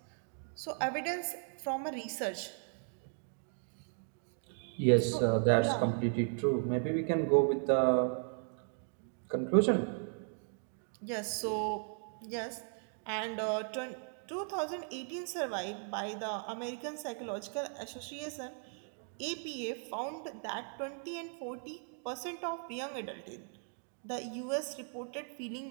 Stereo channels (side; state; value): left; silent; 53 dB below the other